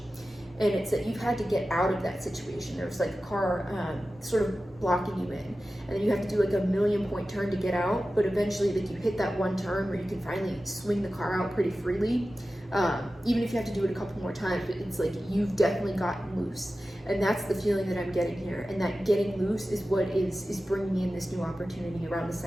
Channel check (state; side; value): normal; both; correlation 0.94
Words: and it's that you've had to get out of that situation. There's like a car sort of blocking you in, and then you have to do like a 1,000,000-point turn to get out, but eventually like you hit that one turn where you can finally swing the car out pretty freely. Even if you have to do it a couple more times, but it's like you've definitely gotten loose. And that's the feeling that I'm getting here. And that getting loose is what is bringing in this new opportunity around the